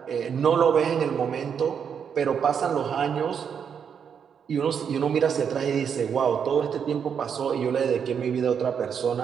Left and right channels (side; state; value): left; quieter; 7.4 dB